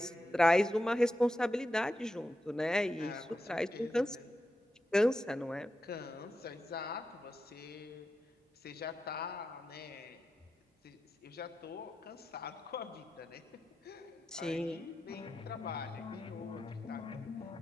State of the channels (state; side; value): normal; both; correlation 0.89